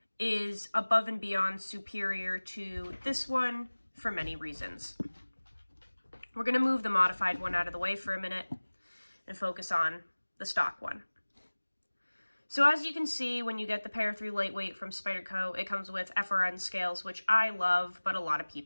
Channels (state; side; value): inverted; both; correlation -1.00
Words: is above and beyond superior to this one for many reasons. We're going to move the modified one out of the way for a minute and focus on the stock one. So as you can see, when you get the Para 3 Lightweight from Spyderco, it comes with FRN scales, which I love, but a lot of